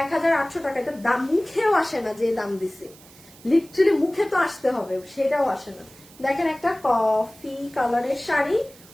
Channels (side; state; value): right; noise; hiss, 23 dB below the sound